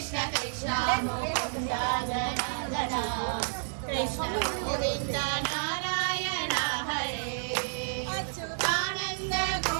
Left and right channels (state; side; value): silent; left; digital silence